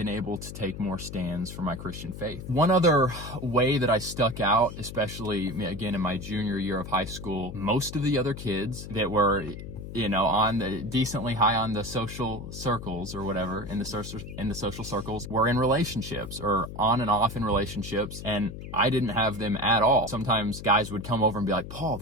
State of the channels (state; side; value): noise; left; hum, 10 dB below the sound